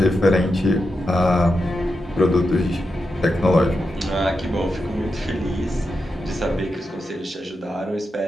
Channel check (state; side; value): normal; both; correlation 0.88